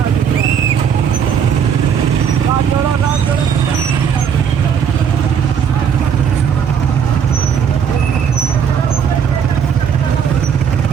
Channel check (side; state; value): left; quieter; 7.6 dB